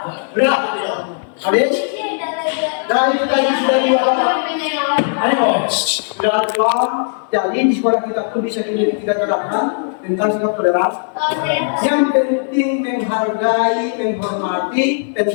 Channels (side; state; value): right; silent; digital silence